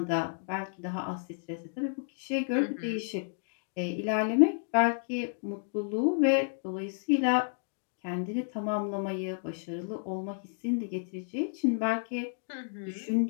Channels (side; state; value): right; silent; digital silence